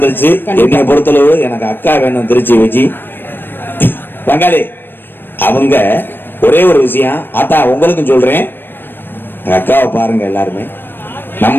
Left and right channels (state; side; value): late; right; 0.097 ms